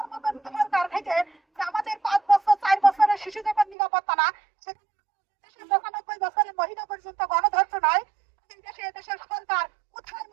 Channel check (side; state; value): left; drops out; at 3.8 s